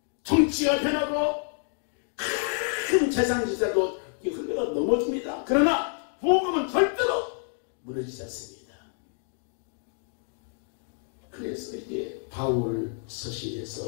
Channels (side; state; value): right; silent; 56 dB below the other